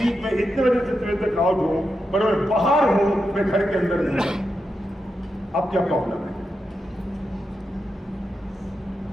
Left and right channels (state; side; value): normal; both; correlation 0.87